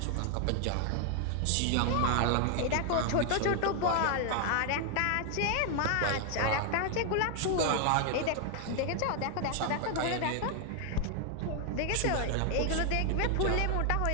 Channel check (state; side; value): different; both; correlation 0.00